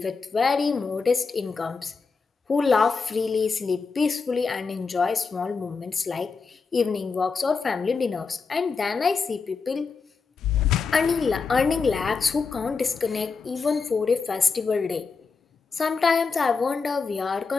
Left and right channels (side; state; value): right; quieter; 4.9 dB